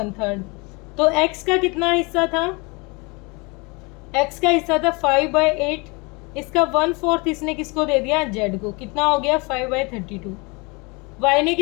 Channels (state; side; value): quieter; right; 28.0 dB